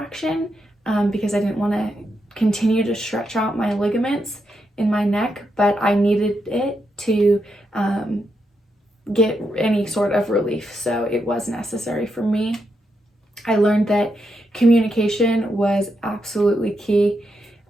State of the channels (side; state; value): both; normal; correlation 0.83